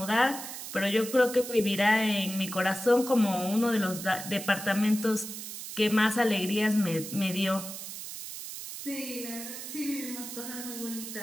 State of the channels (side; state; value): right; noise; hiss, 9 dB below the sound